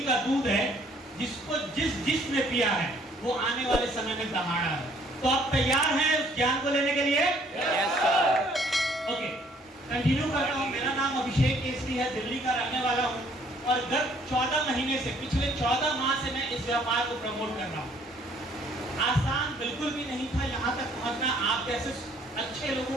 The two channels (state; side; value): normal; both; correlation 0.61